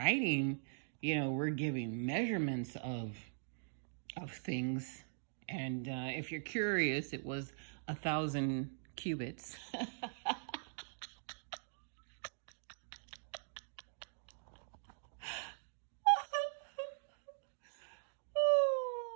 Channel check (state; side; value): silent; left; digital silence